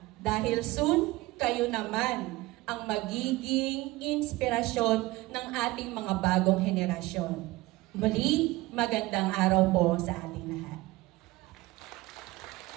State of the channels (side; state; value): left; quieter; 19.8 dB